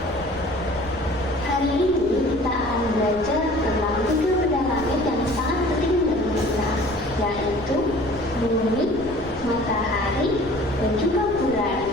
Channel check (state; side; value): noise; right; rumble, 15 dB below the sound